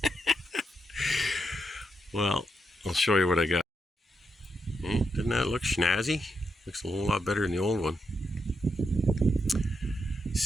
Well, I'll show you what I got. Didn't that look snazzy? Looks a whole lot better than the old one.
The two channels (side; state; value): both; normal; correlation 0.82